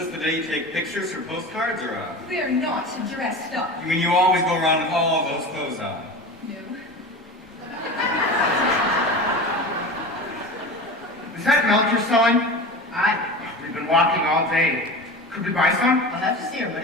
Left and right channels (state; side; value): normal; both; correlation 0.31